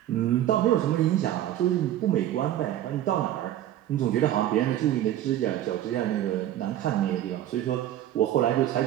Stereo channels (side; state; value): left; quieter; 12.5 dB